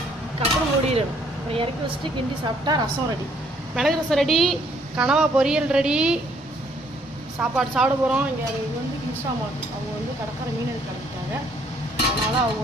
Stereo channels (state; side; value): normal; both; correlation 0.65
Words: கப்படம் மூடிடணும். அப்புறம் இறக்கி வச்சுட்டு கிண்டி சாப்பிட்டா ரசம் ரெடி. மிளகு ரசம் ரெடி, கனவா பொரியல் ரெடி. சாப்பாடு சாப்பிட போகிறோம். இங்கே இது வந்து இன்ஸ்டாமார்ட், அவங்க வந்து கடற்கரை மீன் எடுத்து கிளம்பிட்டாங்க. அதனால்